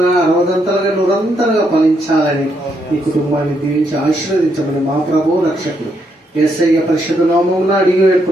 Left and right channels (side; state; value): both; normal; correlation 0.77